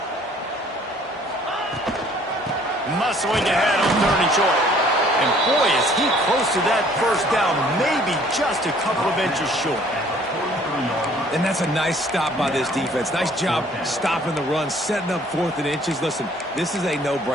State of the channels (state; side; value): normal; both; correlation 0.57